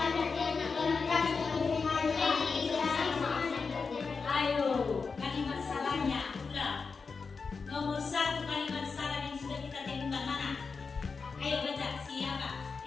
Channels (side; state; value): right; quieter; 4.9 dB